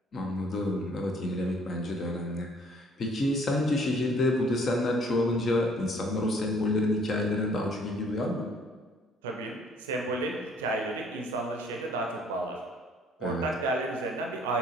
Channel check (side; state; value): both; normal; correlation 0.59